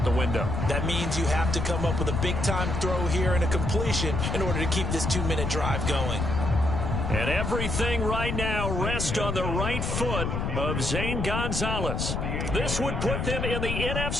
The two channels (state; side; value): noise; left; rumble, 1 dB below the sound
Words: the window. That means you have to come up with a big-time throw here and a completion in order to keep this 2-minute drive going. And everything right now rests on the right foot of Zane Gonzalez. This would put them in the